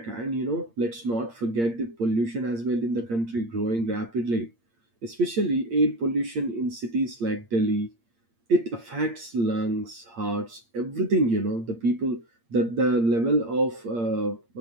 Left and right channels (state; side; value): late; left; 8.7 ms